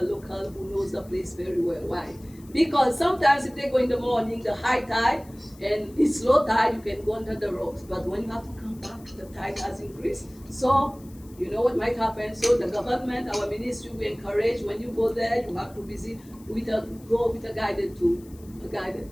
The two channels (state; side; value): noise; left; hiss, 26 dB below the sound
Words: local who knows the place very well. Why? Because sometimes if they go in the morning, the high tide, and it's low tide, you can go under the rocks. But when you have to come back, the tide has increased. So you know what might happen. So the government, our ministry, we encourage when you go there, you have to visit go with a guided tour.